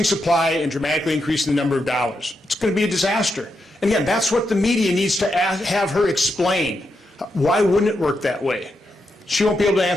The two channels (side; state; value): both; normal; correlation 0.84